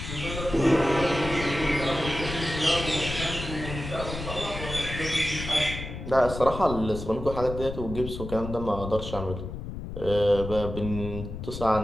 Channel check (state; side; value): noise; left; rumble, 8 dB below the sound